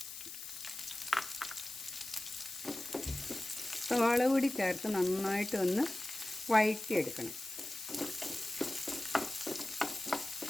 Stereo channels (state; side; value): noise; left; hiss, 10 dB below the sound